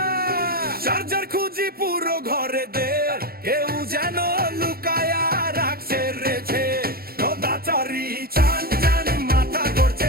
চার্জার খুঁজি পুরো ঘরে দে, কেউ যেন লুকায়া রাখছে রেছে। নদাচারি চান চান মাথা করছে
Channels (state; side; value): late; left; 0.44 ms